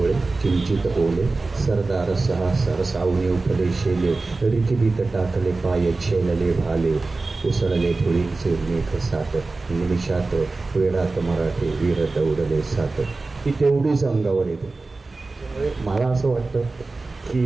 किंचित ओले, सरदार सहा सरसावणे उठले शेले, रिकिबीत टाकले पाय छेलले भाले, उसळले धुळीचे मेघ सात, निमिषात वेळात मराठे वीर दौडले सात. ती तेवढीच अंगावर येते. त्यामुळे मला असं वाटतं की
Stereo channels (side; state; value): left; quieter; 3.5 dB